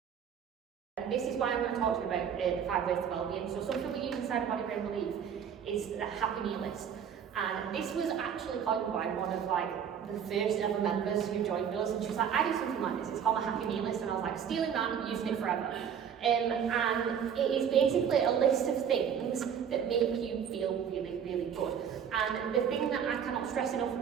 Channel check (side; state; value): left; quieter; 8.0 dB